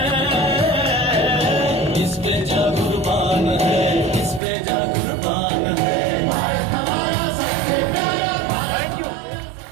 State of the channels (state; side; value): drops out; left; at 4.4 s